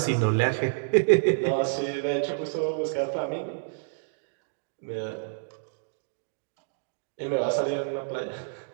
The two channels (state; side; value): silent; left; digital silence